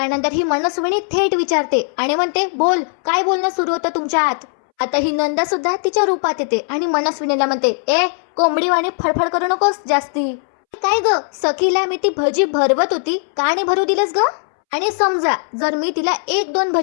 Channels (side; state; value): right; silent; 67 dB below the other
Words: ही मनस्विनी थेट विचारते आणि म्हणते, बोल काय बोलणं सुरू होतं तुमच्यात? आता ही नंदा सुद्धा तिच्या रूपात येते आणि मनस्विनीला म्हणते, ए कोंबडीवाणी फडफड करू नकोस जास्ती. काय ग सखीला मी ती भजी भरवत होती, का नाही भरू दिलंस ग? आणि समजा जर मी तिला 1-2